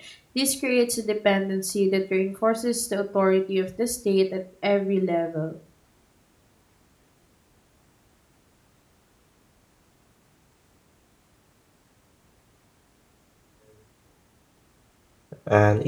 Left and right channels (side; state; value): both; identical; correlation 1.00